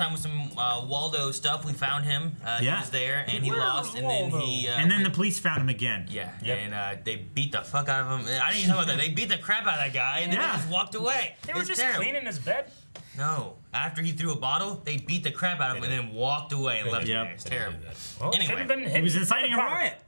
with some Waldo stuff, we found him. He Yeah. was there, and he Where lost, was and then Waldo? he. And then the police found him again. Yeah, Yep. and they beat the fuck out of him. I didn't even know about that. They beat the crap out of that guy, and then Yeah. they just walked away. They were It's just terrible. cleaning his bed. No, after he threw a bottle, they beat the crap out of him and then walked away and left him Yep. there. It's terrible. Well, Anyway. should have been hit. He was inciting a riot.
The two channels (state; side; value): inverted; both; correlation -1.00